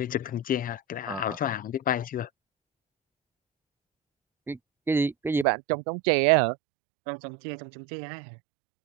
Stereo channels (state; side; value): drops out; left; at 5.5 s